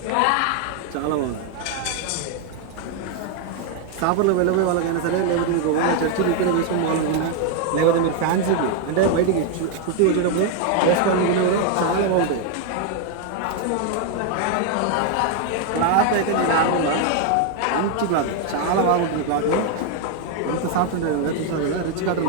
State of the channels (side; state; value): both; different; correlation 0.01